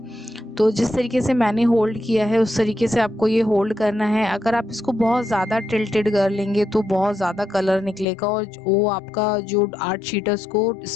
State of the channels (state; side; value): drops out; right; at 8.1 s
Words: तो जिस तरीके से मैंने होल्ड किया है उस तरीके से आपको ये होल्ड करना है। अगर आप इसको बहुत ज़्यादा टिल्टेड कर लेंगे तो बहुत ज़्यादा कलर निकलेगा और वो आपका जो आर्ट शीट है उसको